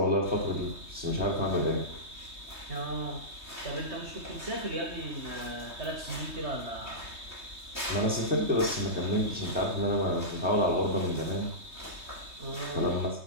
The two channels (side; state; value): left; late; 3.2 ms